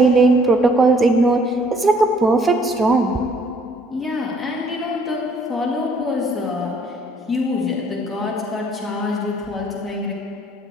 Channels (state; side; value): normal; both; correlation 0.62